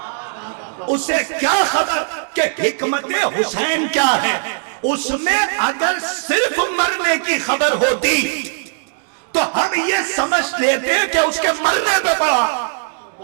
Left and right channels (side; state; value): left; silent; digital silence